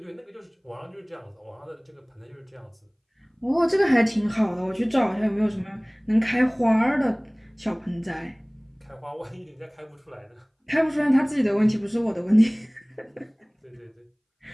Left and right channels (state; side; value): identical; both; correlation 1.00